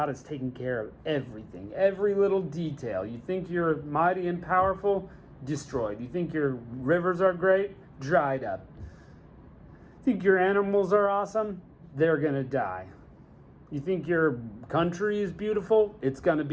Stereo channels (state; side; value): identical; both; correlation 1.00